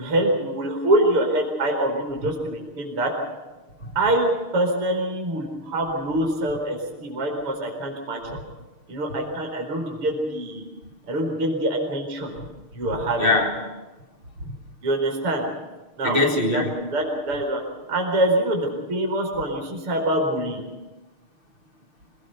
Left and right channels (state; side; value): late; left; 6.6 ms